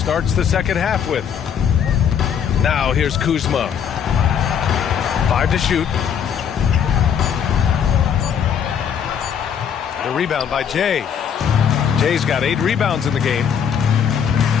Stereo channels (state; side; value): quieter; right; 8.0 dB